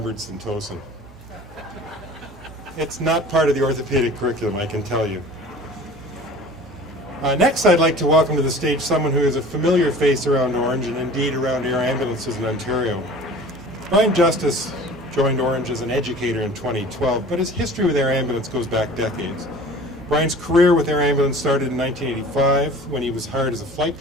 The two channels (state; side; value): normal; both; correlation 0.43